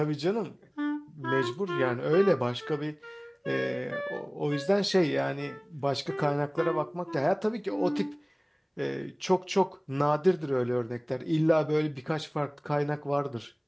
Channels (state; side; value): identical; both; correlation 1.00